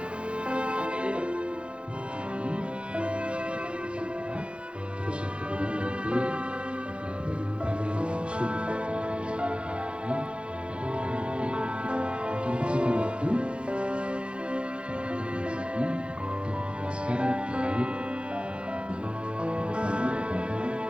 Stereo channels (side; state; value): left; late; 0.057 ms